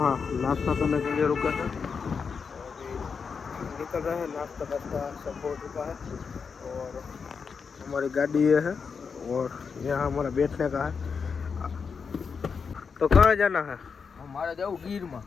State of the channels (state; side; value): quieter; right; 5.7 dB